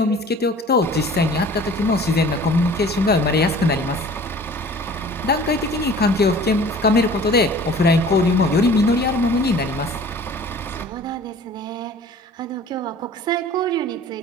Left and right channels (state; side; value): normal; both; correlation 0.46